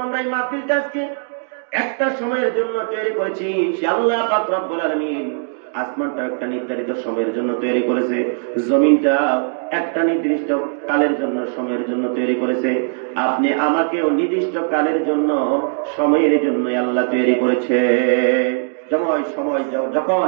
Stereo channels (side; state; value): left; silent; 66 dB below the other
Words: আমরা এই মাহফিলটা আজকে একটা সময়ের জন্য তৈরি করেছি, সে আল্লাহ পাক রব্বুল আলামিন আসমানটা একটা নির্ধারিত সময়ের জন্য তৈরি করেছে, জমিনটা একটা নির্দিষ্ট কালের জন্য, সময়ের জন্য তৈরি করেছে। আপনি আমাকেও নির্দিষ্ট কালের জন্য, সময়ের জন্য আল্লাহ তৈরি করেছে।